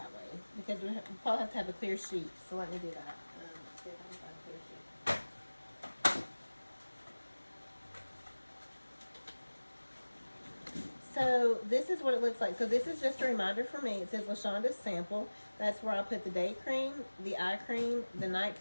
way because we probably have to have a clear sheet. So let me do that. Let's see if I can find a clear sheet. So this is what it looks like. So this is just a reminder for me. It says LaShonda's sample. That's where I put the day cream, the eye cream, the night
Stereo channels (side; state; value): both; inverted; correlation -1.00